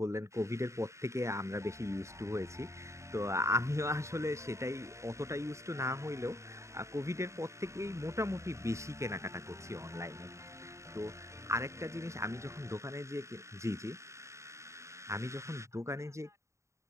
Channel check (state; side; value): late; left; 0.14 ms